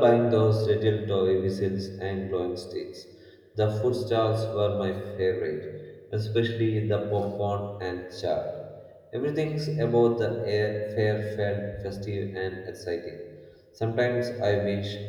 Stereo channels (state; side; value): identical; both; correlation 1.00